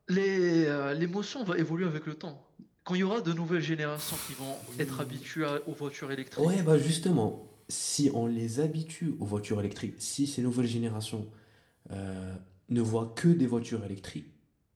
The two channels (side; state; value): both; identical; correlation 1.00